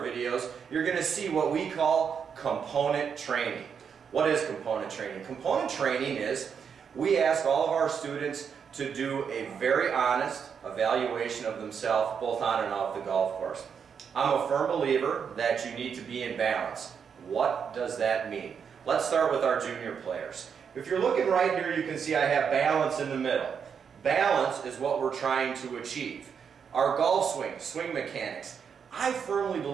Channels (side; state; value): left; quieter; 6.9 dB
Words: you're going to see what we call component training. What is component training? Component training is we ask all of our students to do a very honest evaluation of themselves both on and off the golf course. I'm a firm believer that you need to be in balance. What does that mean? Let's start with our junior players. If you're looking right here, you can see I have balance in the middle. Balance is what we're trying to achieve. Our golf swing, swing mechanics, I firmly